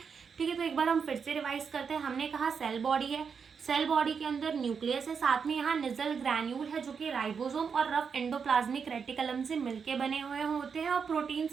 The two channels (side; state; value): left; quieter; 6.1 dB